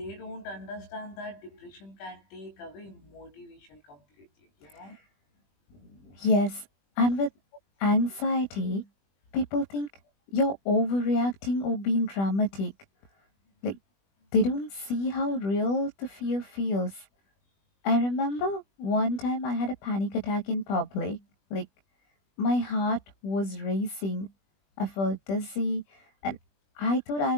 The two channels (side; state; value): right; late; 20 ms